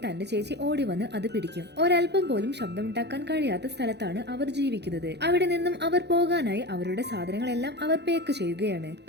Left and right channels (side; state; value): left; late; 0.49 ms